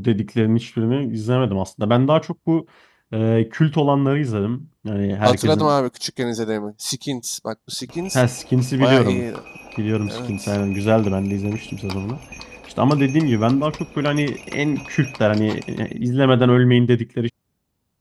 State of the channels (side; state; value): both; identical; correlation 1.00